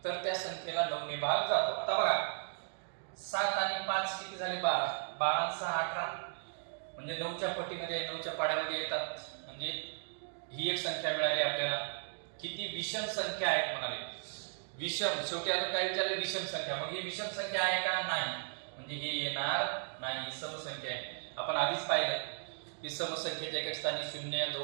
तर त्या संख्येला 9 ने भाग जातो. आता बघा, 7 आणि 5 किती झाले? 12. 12 आणि 6 18, म्हणजे 9च्या पटीमध्ये, 9च्या पाड्यामध्ये येतात, म्हणजे ही एक संख्या मिळाली आपल्याला. किती विषम संख्या आहेत म्हणाले? विषम, शेवटी अजून काय विचारले? विषम संख्या. मग ही विषम संख्या आहे का? नाही, म्हणजे हे येणार नाही, समसंख्या आहे. आपण आधीच पाहिलं की समसंख्येच्या एका स्थानी 0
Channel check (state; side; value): silent; left; digital silence